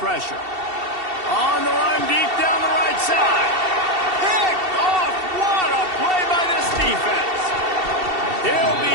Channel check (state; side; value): late; left; 2.7 ms